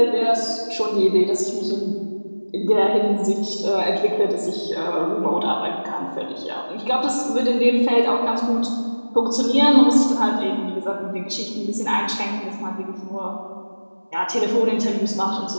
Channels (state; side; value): inverted; both; correlation -1.00